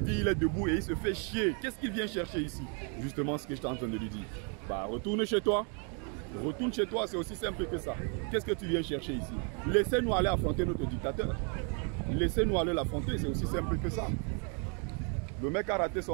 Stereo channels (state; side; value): quieter; left; 38.0 dB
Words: il est debout et il se fait chier. Qu'est-ce qu'il vient chercher ici? Justement ce que j'étais en train de lui dire. Bah, retourne chez toi. Retourne chez toi, c'est aussi simple que ça. Qu'est-ce que tu viens chercher ici? Laissez-nous aller affronter notre dictateur. Laissez-nous aller l'affronter, c'est aussi simple que ça. Le mec a raté